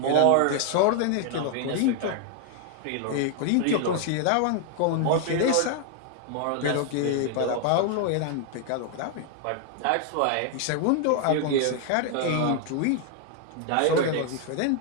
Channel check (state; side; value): different; both; correlation 0.00